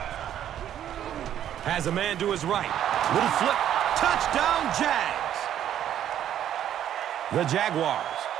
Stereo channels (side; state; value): left; quieter; 10.7 dB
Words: Has a man to his right. Little flip. Touchdown, Jags. The Jaguars